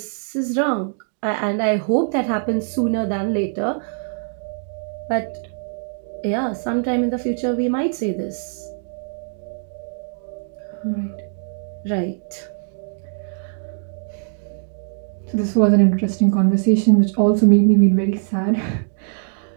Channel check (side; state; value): left; silent; 64 dB below the other